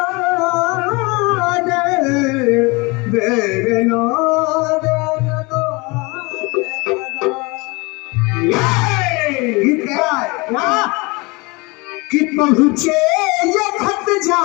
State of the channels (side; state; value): right; quieter; 26.2 dB